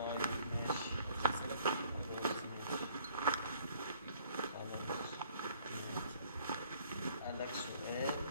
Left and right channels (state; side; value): inverted; both; correlation -0.59